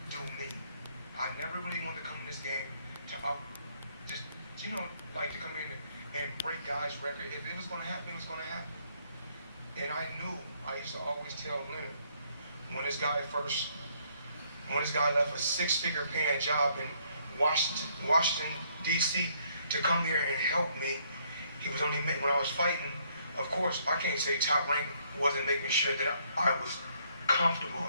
do me. I never really wanted to come in this game to just, like to come in and break guys' record. If it was going to happen, it was going to happen. And I used to always tell Leonard, when this guy left a six-figure paying job in Washington, D.C. to come here and help me, he was only when I was fighting. Of course, I can't say Top Rank wasn't making sure that I was comfortable.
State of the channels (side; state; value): both; inverted; correlation -0.68